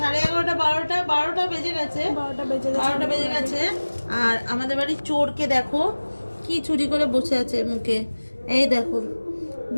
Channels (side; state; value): both; inverted; correlation -1.00